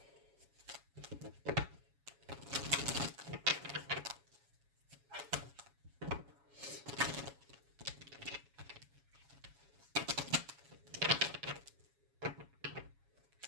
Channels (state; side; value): late; left; 7.2 ms